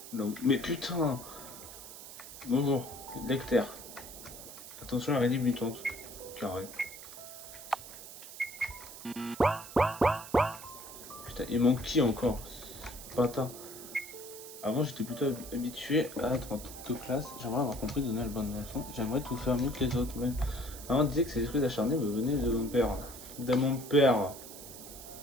Non, mais putain! Bonjour, lecteur. Attention à l'araignée mutante. Carré. Putain, il manque qui encore? Patin. Avant, j'étais plutôt habitué à être en toute classe. J'aimerais avoir compris donner la bonne leçon. J'aimerais tout faire mieux que les autres. Mais avant, on disait que ces esprits acharnés me venaient de mon père. De mon père.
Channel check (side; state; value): right; noise; hiss, 13 dB below the sound